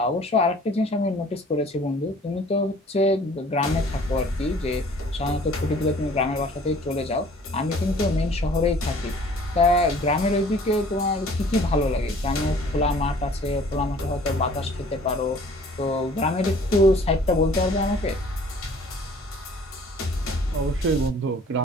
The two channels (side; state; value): both; normal; correlation 0.52